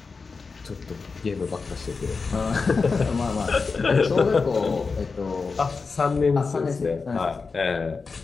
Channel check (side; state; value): right; quieter; 4.6 dB